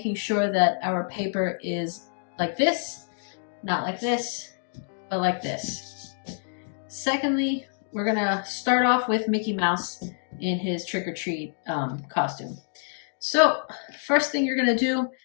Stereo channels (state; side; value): silent; right; digital silence